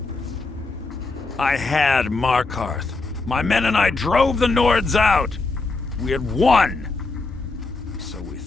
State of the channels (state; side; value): quieter; right; 3.6 dB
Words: I had Markarth. My men and I drove the Nords out. We had won. So we